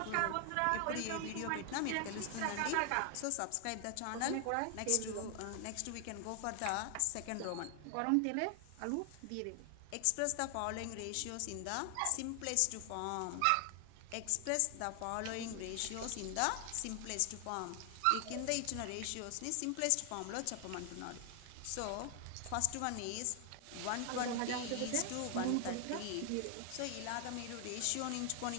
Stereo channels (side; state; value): both; different; correlation 0.00